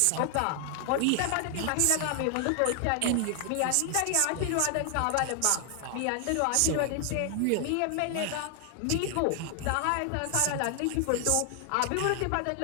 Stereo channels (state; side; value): different; both; correlation 0.00